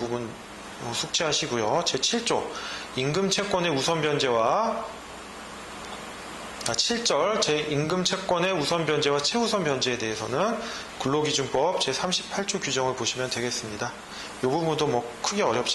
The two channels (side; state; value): both; identical; correlation 1.00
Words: 숙지하시고요. 제7조 임금채권의 우선 변제와 7절 제임금채권의 우선 변제와 최우선 변제에 대해서는 근로기준법 제38조 규정을 보시면 되겠습니다. 이 부분도 크게